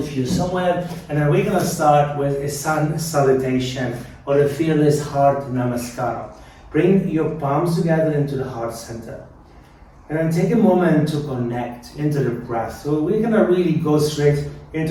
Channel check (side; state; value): both; identical; correlation 1.00